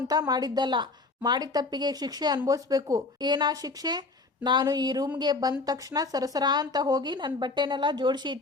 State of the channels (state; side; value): quieter; right; 3.7 dB